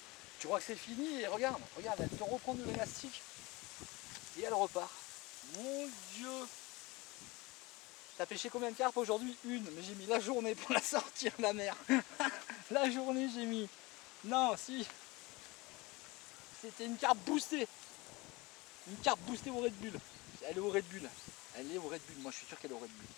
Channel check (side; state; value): right; quieter; 23.4 dB